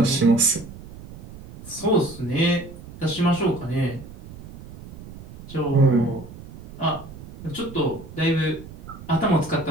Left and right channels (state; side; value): noise; right; rumble, 16 dB below the sound